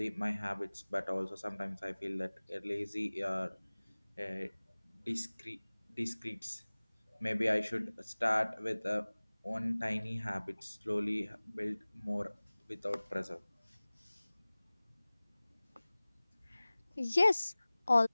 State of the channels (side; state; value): both; inverted; correlation -1.00